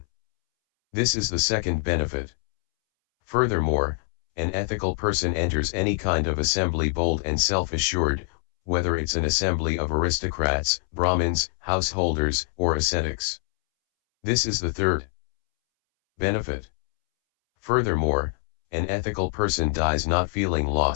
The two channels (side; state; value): right; silent; 62 dB below the other